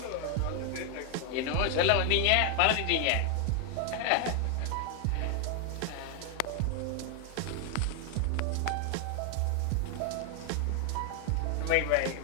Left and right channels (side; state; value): both; different; correlation 0.00